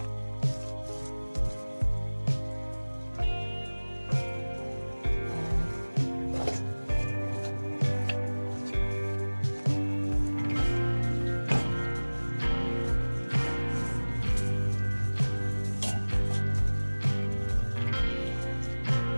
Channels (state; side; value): inverted; both; correlation -1.00